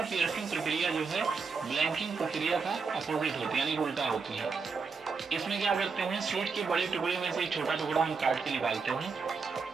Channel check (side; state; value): left; quieter; 5.0 dB